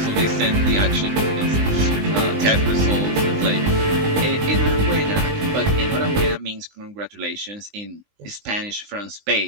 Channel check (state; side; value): late; left; 19 ms